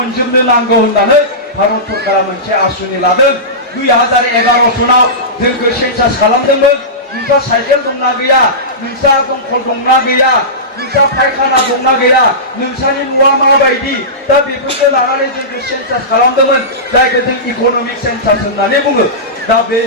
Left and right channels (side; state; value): both; normal; correlation -0.19